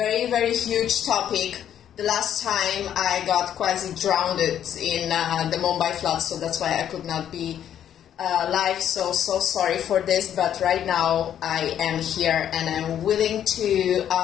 very huge topic. The last time I got quasi drowned in the Mumbai flood, so that's why I could not be live. So sorry for this, but right now I am here and I'm willing to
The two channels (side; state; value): right; quieter; 10.0 dB